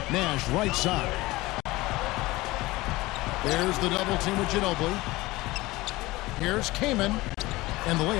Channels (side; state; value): right; quieter; 20.0 dB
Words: Nash right side. There's the double team with Ginobili. Here's Kaman. And the